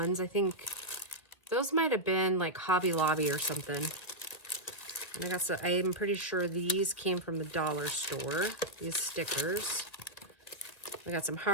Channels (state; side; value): late; right; 1.8 ms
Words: I think those might have been like Hobby Lobby or something. And I got some, I'm pretty sure these came from the dollar store, these stickers. I got some